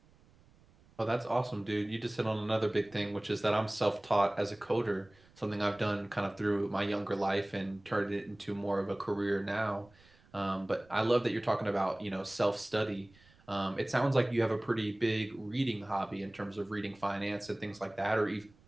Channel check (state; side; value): noise; right; rumble, 28 dB below the sound